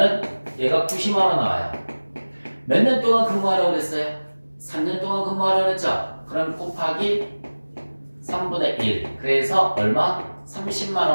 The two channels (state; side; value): inverted; both; correlation -1.00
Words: 얘가 90만 원 나와요. 몇 년 동안 근무하라고 그랬어요? 3년 동안 근무하라고 그랬죠? 그럼 곱하기 3분의 1. 그래서 얼마? 30만